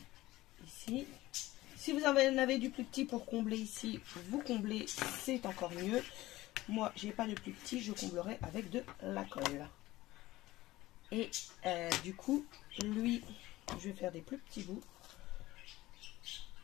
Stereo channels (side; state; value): right; quieter; 17.6 dB